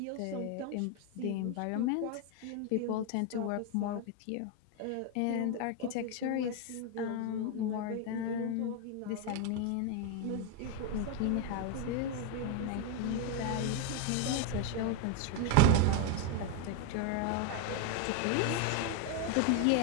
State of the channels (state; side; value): different; both; correlation 0.01